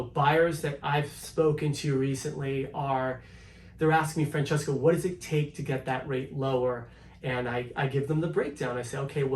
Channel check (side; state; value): both; identical; correlation 1.00